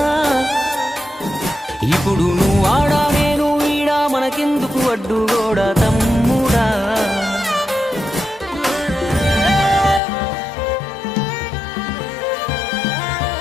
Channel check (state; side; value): drops out; right; at 10.0 s